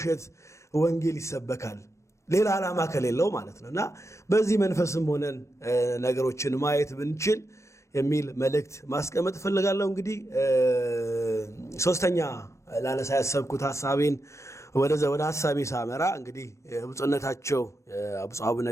ወንጌል ይሰበካል? ሌላ ዓላማ ከሌለው ማለት ነው እና በዚህ መንፈስም ሆነን ነገሮችን ማየት ብንችል የሚል መልእክት ማስቀመጥ እፈልጋለሁ። እንግዲህ ሶስተኛ ላነሳ ያሰብኩት ሐሳቤን ወደ ሐሳቤ ሳመራ እንግዲህ ብፁዕነታቸው ብፁዕ አቡነ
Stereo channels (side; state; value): right; late; 0.14 ms